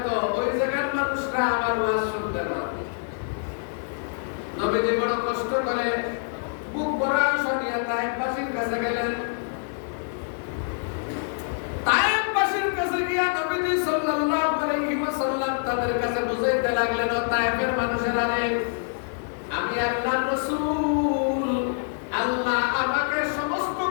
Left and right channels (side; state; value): right; silent; digital silence